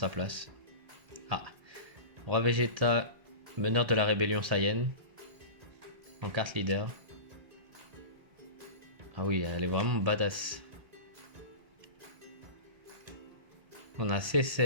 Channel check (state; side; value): late; left; 1.8 ms